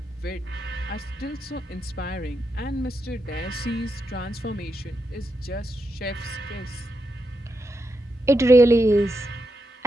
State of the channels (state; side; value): normal; both; correlation 0.85